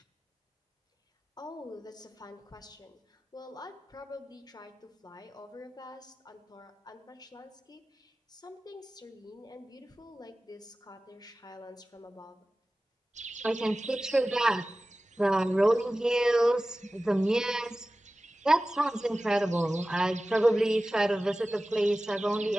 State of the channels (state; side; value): normal; both; correlation 0.96